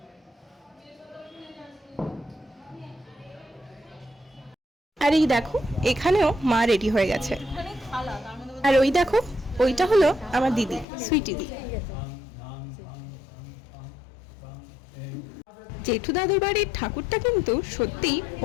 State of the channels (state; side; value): drops out; right; at 10.9 s